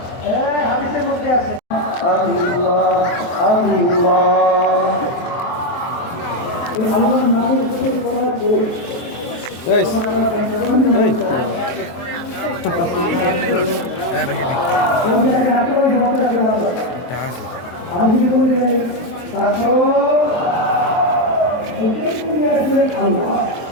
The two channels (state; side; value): late; right; 23 ms